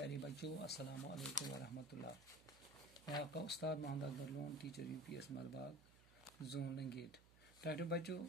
بچوں السلام علیکم ورحمۃ اللہ. میں آپ کا استاد Mohammad Akbar Lone teacher U P S Malbagh zone Langate. پیارے بچوں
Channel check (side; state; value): right; noise; hum, 23 dB below the sound